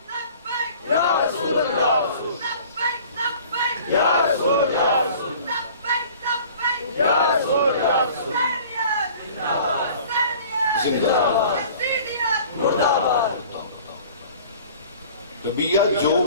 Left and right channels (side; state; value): both; inverted; correlation -0.47